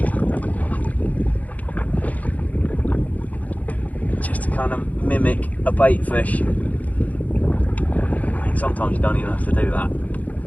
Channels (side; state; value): right; late; 0.076 ms